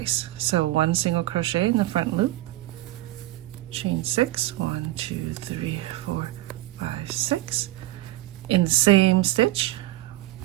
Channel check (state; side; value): quieter; left; 16.4 dB